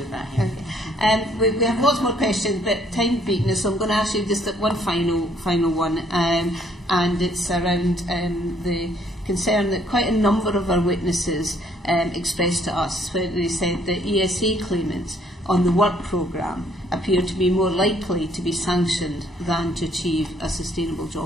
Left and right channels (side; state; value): both; normal; correlation 0.65